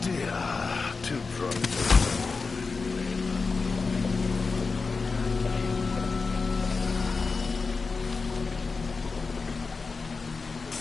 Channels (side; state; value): right; quieter; 4.4 dB